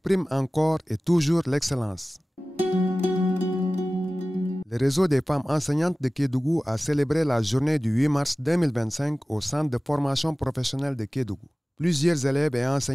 prime encore et toujours l'excellence. Le réseau des femmes enseignantes de Kédougou a célébré la journée du 8 mars 2025 au centre de formation professionnelle de Kédougou. Plusieurs élèves et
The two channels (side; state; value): both; normal; correlation 0.97